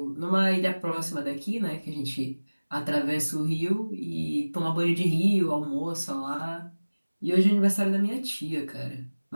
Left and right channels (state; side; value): inverted; both; correlation -1.00